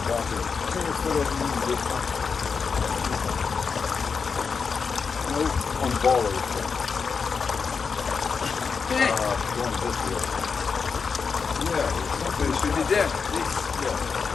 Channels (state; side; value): quieter; right; 5.5 dB